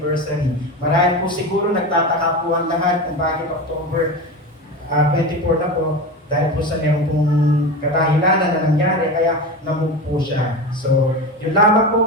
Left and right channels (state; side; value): normal; both; correlation 0.25